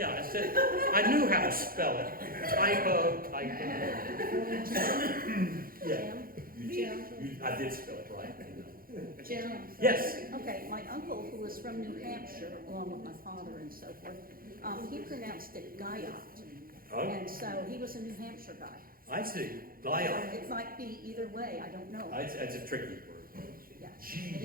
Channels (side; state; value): left; late; 0.42 ms